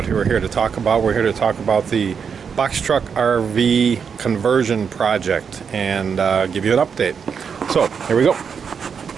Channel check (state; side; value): quieter; left; 6.5 dB